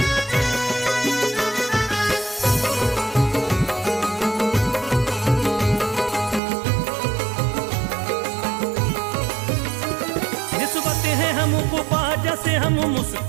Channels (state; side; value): drops out; left; at 6.4 s